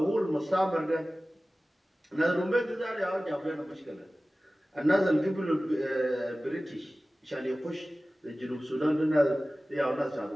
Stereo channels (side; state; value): both; normal; correlation 0.97